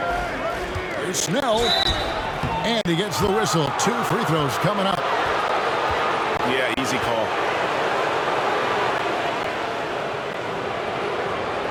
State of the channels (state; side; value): identical; both; correlation 1.00